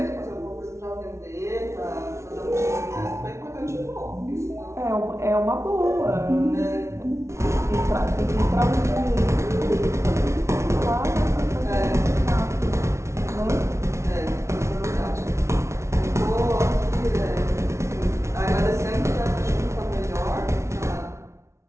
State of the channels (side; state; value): left; late; 0.13 ms